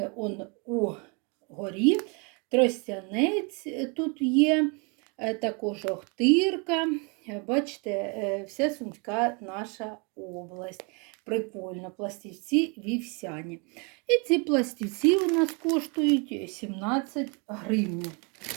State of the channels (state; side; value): quieter; left; 33.2 dB